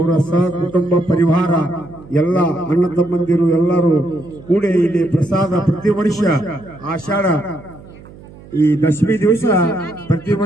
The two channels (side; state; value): right; noise; hum, 20 dB below the sound